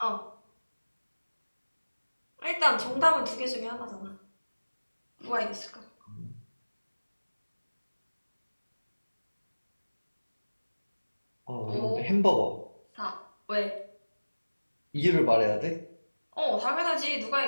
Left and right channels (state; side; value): inverted; both; correlation -1.00